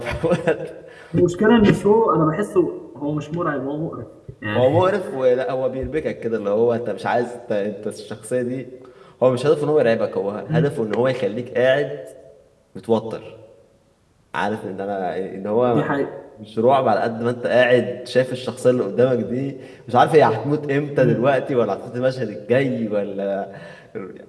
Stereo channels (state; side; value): identical; both; correlation 1.00